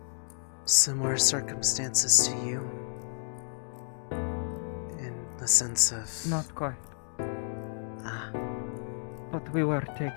similar circumstances to you? In the sense of... Not quite. Ah. But we were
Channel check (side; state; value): right; silent; digital silence